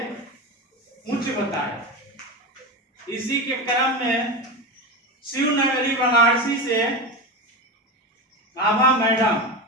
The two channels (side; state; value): both; normal; correlation 0.20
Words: उच्च बताया। इसी के क्रम में शिवनगरी बनारसी से आभा मैडम